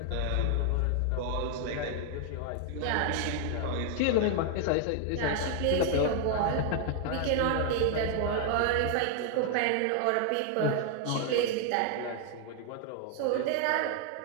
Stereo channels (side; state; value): both; different; correlation 0.00